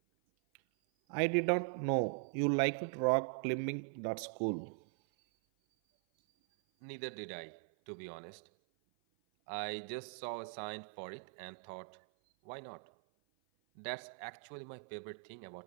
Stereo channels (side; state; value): left; silent; 51 dB below the other